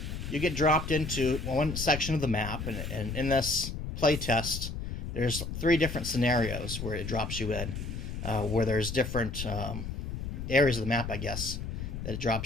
you get dropped into one section of the map, and in this playtest, there's 3 different scenarios where it drops you in, where there's different areas of the map, I guess, that it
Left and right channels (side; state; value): left; noise; rumble, 5 dB below the sound